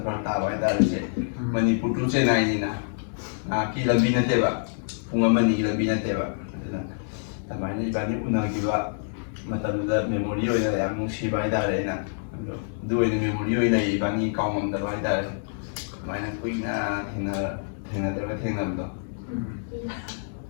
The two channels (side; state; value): right; silent; 58 dB below the other